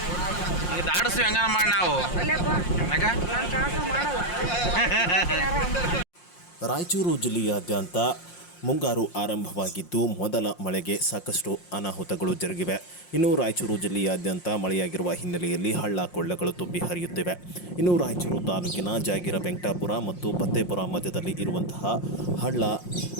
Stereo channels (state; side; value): late; right; 5.6 ms